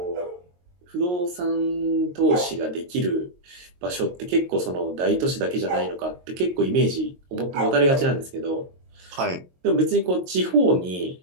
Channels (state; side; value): late; left; 22 ms